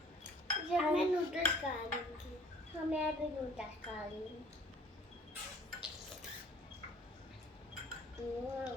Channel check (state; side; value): normal; both; correlation 0.53